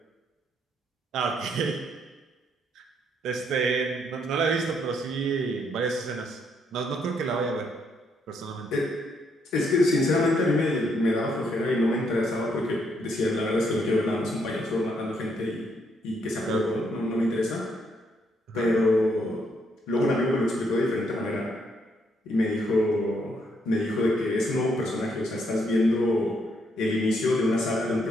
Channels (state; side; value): normal; both; correlation 0.74